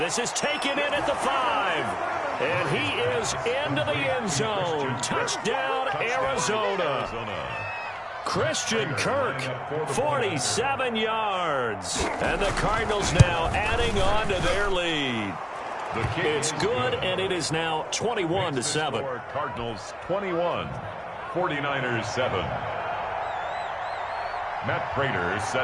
this is taken in at the 5. And he is into the end zone. Touchdown, Arizona. Christian Kirk, 47 yards. And the Cardinals now adding on to their lead. It's good, and it is now 21-7. Cardinals 21, 49ers 7. Matt Prater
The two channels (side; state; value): both; identical; correlation 1.00